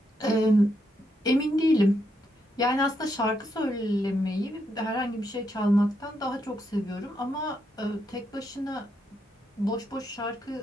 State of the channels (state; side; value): normal; both; correlation 0.79